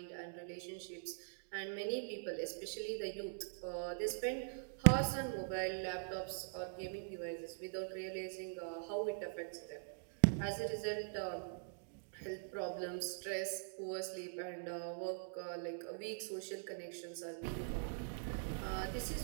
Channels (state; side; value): silent; left; digital silence